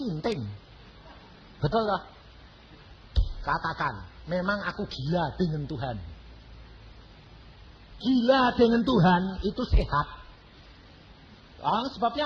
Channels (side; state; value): both; identical; correlation 1.00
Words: Betul lah. Katakan, memang aku gila dengan Tuhan. Gila dengan Tuhan itu sehat.